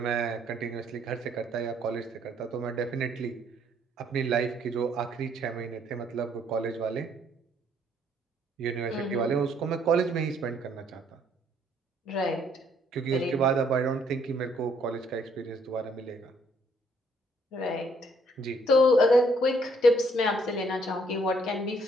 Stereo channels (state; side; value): normal; both; correlation 0.66